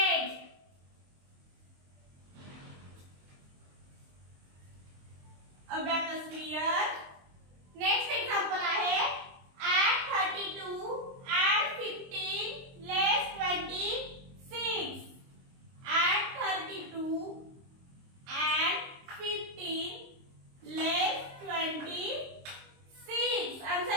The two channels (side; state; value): left; late; 23 ms